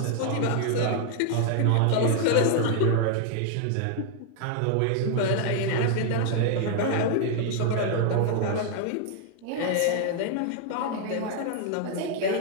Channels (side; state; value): both; different; correlation 0.00